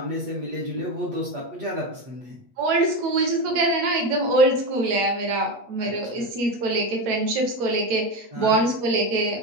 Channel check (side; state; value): left; late; 8.4 ms